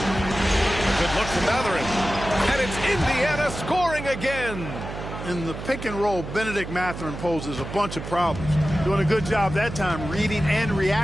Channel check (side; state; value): right; noise; hum, 9 dB below the sound